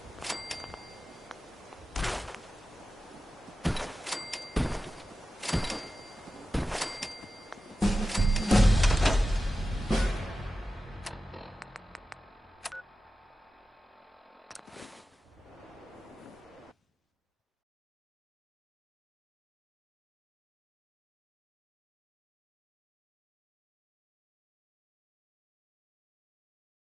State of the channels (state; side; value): normal; both; correlation 0.93